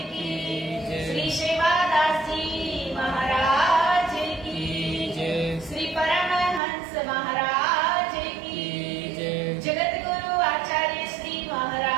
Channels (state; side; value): drops out; left; at 6.6 s